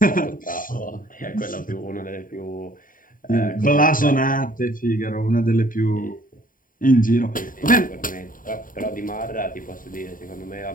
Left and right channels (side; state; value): right; late; 0.40 ms